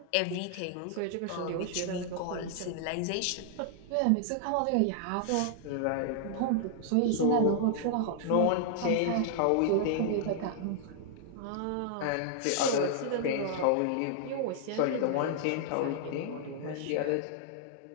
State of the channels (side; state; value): both; different; correlation -0.01